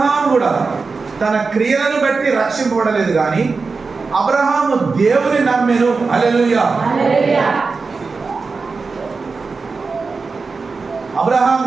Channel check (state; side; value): quieter; left; 4.4 dB